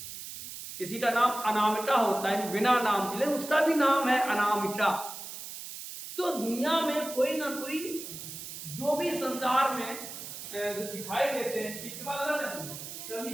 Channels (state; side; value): noise; right; hiss, 10 dB below the sound